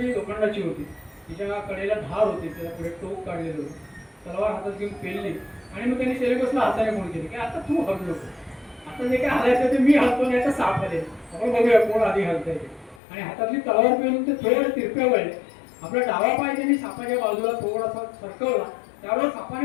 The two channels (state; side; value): drops out; right; at 13.0 s